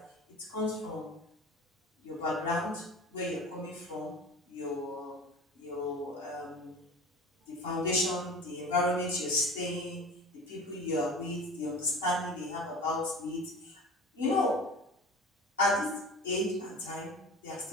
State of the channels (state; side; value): normal; both; correlation 0.37